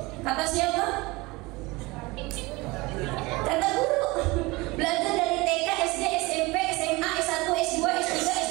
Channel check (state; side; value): quieter; left; 23.1 dB